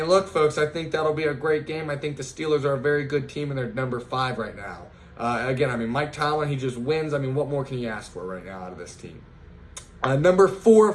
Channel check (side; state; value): both; identical; correlation 1.00